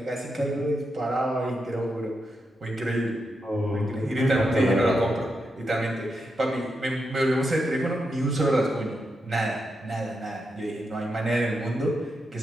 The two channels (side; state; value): both; normal; correlation 0.85